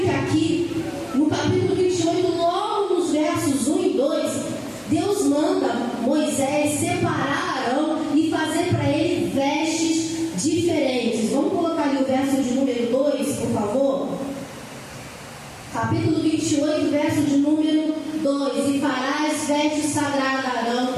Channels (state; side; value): identical; both; correlation 1.00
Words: que aqui, no capítulo 28, logo nos versos 1 e 2, Deus manda Moisés separar Arão e fazer para ele vestes diferentes. Vamos colocar ali o verso de número 2, por favor? Capítulo 28, verso de número 2. E farás vestes sagradas a Arão,